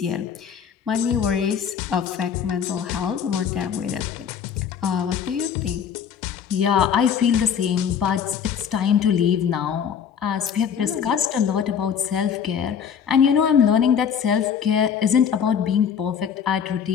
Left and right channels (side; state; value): right; quieter; 7.7 dB